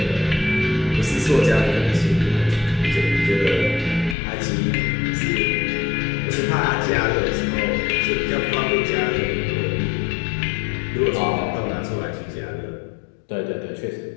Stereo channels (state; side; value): drops out; right; at 4.2 s